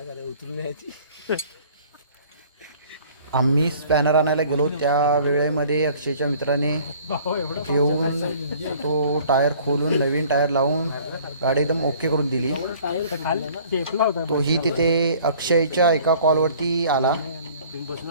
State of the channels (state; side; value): inverted; both; correlation -0.52